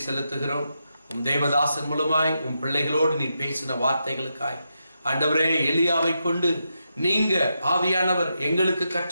செலுத்துகிறோம். உம் தேவதாசன் மூலமாய் உம் பிள்ளைகளோடு நீ பேசின வார்த்தைகளுக்காய் ஆண்டவரே, எலியாவை கொண்டு நீங்க ஆவியானவர் எங்களுக்கு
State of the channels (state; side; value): inverted; both; correlation -0.85